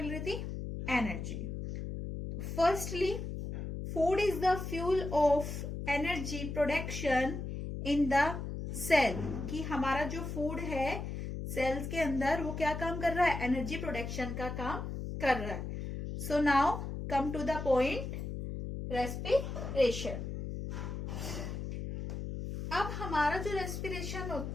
रही थी, energy. Firstly, food is the fuel of energy production in the cell, कि हमारा जो फूड है सेल्स के अंदर वो क्या काम कर रहा है, एनर्जी प्रोडक्शन का काम कर रहा है। So now come to the point, respiration. अब हमारा जो रेस्पिरेशन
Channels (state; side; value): noise; left; hum, 5 dB below the sound